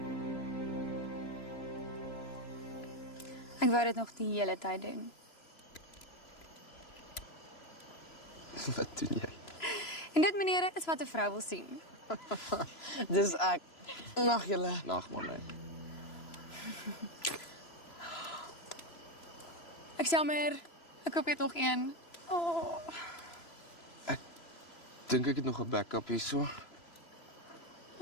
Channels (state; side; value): late; right; 3.0 ms